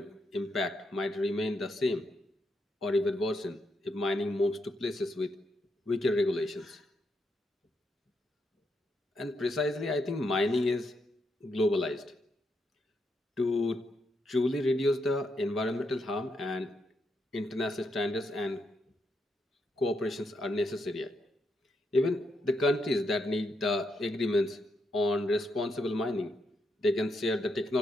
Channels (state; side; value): normal; both; correlation 0.80